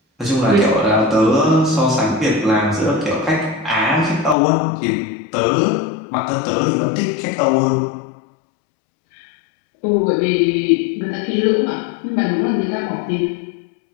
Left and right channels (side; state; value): right; drops out; at 4.4 s